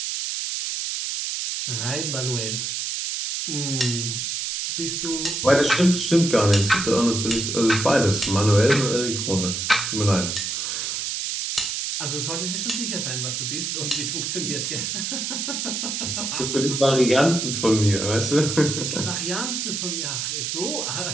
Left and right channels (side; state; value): right; noise; hiss, 2 dB below the sound